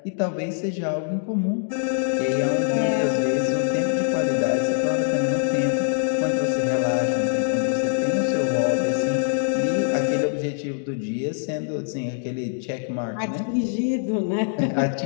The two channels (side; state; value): right; silent; digital silence